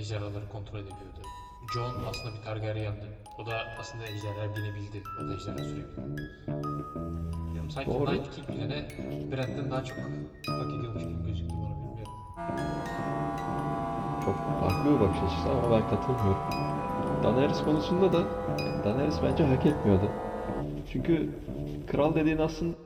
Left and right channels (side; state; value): both; identical; correlation 1.00